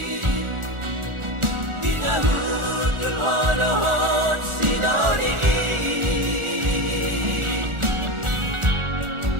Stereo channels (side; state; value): left; late; 1.4 ms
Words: dinahudul honohon sinoni